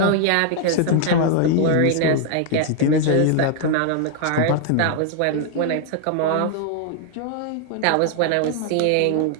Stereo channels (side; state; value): both; different; correlation 0.00